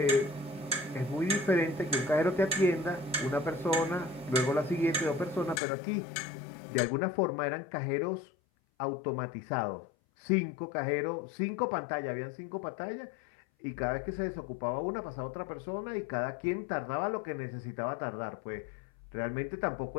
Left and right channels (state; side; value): drops out; right; at 5.6 s